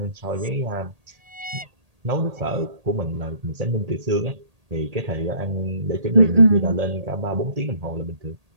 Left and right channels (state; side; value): late; left; 1.8 ms